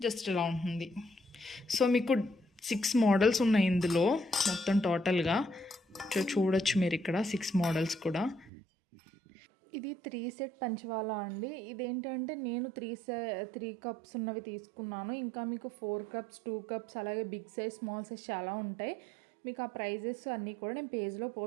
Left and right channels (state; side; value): drops out; left; at 8.5 s